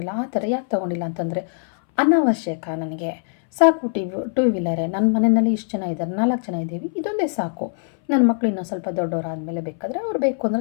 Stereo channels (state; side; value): silent; right; 62 dB below the other